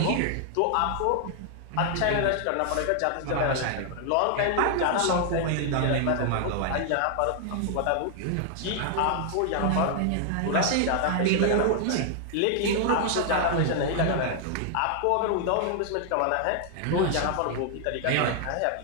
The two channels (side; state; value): both; different; correlation 0.00